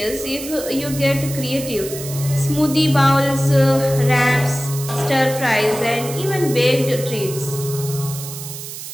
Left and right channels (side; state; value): right; noise; hiss, 10 dB below the sound